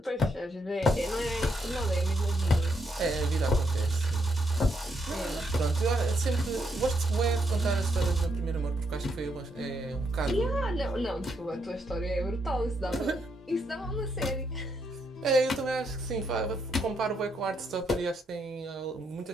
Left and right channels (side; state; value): both; normal; correlation 0.77